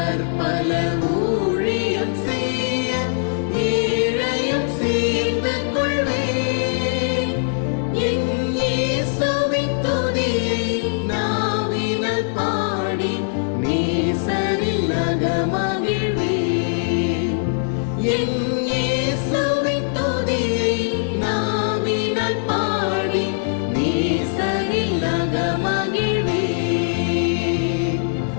ஊழியம் செய்ய ஏழையும் சேர்ந்து கொள்வேன். என் இயேசுவின் துதியை நாவினால் பாடி நேசரில் அகமகிழ்வேன். என் இயேசுவின் துதியை நாவினால் பாடி நேசரில் அகமகிழ்வேன்.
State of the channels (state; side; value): silent; right; 65 dB below the other